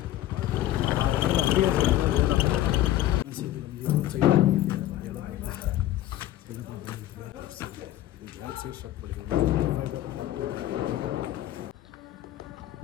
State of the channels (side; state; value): right; quieter; 13.7 dB